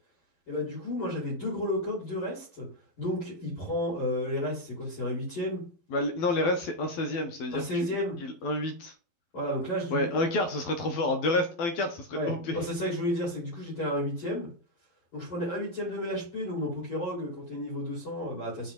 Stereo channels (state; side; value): late; right; 12 ms